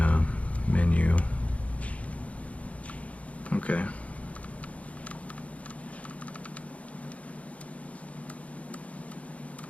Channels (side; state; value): right; late; 0.066 ms